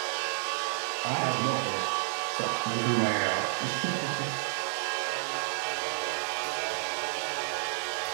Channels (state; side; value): silent; left; digital silence